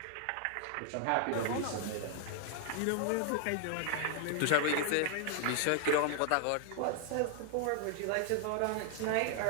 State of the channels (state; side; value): different; both; correlation 0.00